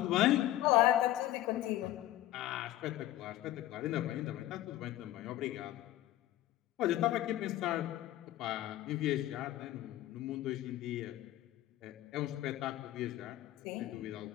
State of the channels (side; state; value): right; quieter; 14.5 dB